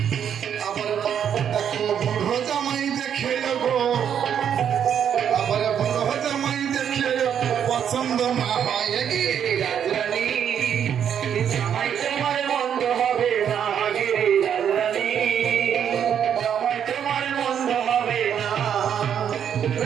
আবার দেখো বুড়ো জামাই দেখে গো, আবার বুড়ো জামাই দেখে পছন্দ না হয় কি রাজরানী জামাই তোমার মন্দ হবে না গে রাজরানী, জামাই তোমার মন্দ হবে না।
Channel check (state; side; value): quieter; left; 8.6 dB